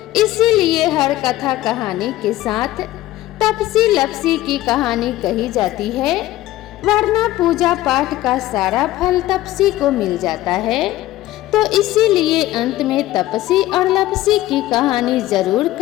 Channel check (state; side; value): quieter; right; 15.7 dB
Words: इसीलिए हर कथा कहानी के साथ तपसी लपसी की कहानी कही जाती है, वरना पूजा पाठ का सारा फल तपसी को मिल जाता है। तो इसीलिए अंत में तपसी और लपसी की कहानी जरूर